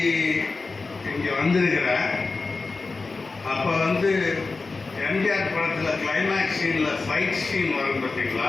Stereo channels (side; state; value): right; quieter; 3.9 dB